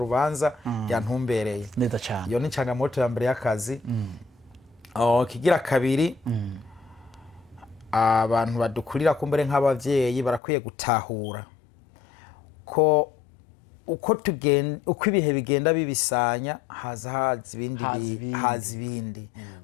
yantumbereye neza cyane iyo ni canga moto ya mbere y'akazi kigira kabiri abantu badukurira kumbere nk'abavyeyi barakwiye gutahura ko uko ibihe bigenda bibisanya haza ibindi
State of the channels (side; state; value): right; drops out; at 10.4 s